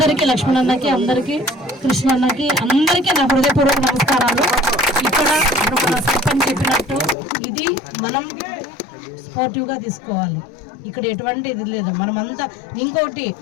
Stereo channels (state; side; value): drops out; right; at 7.2 s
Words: లక్ష్మణన్నకి, అందరికీ, కృష్ణన్నకి, అందరికీ నా హృదయపూర్వక నమస్కారాలు. ఇక్కడ మన సర్పంచ్ చెప్పినట్టు ఇది మనం స్పోర్టివ్గా తీసుకోవాలి. ఇక్కడ ఎటువంటి ఇది లేదు. మనమంతా ఇంకోటి